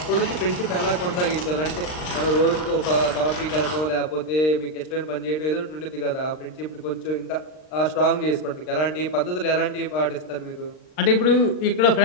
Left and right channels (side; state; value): right; late; 39 ms